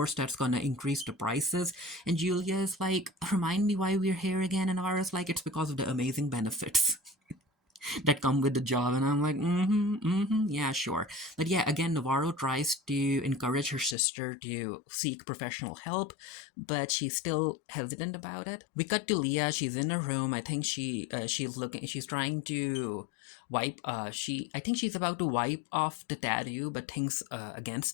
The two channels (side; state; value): right; drops out; at 14.0 s